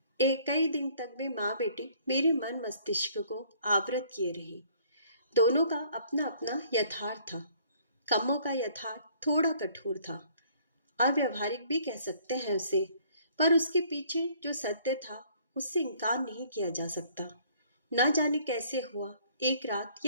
एक कई दिन तक वे माँ बेटी मेरे मन मस्तिष्क को आवृत किए रही। दोनों का अपना अपना यथार्थ था। कम्मों का यथार्थ थोड़ा कठोर था, अव्यवहारिक भी कह सकते हैं उसे, पर उसके पीछे जो सत्य था उससे इनकार नहीं किया जा सकता। न जाने कैसे हुआ, एक रात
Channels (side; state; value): both; inverted; correlation -0.59